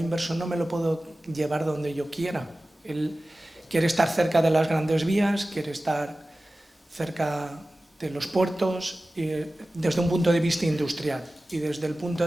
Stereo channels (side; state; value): both; normal; correlation 0.96